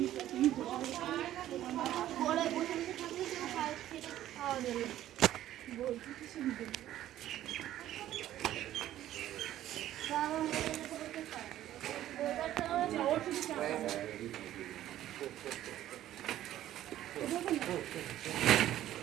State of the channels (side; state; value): left; quieter; 13.0 dB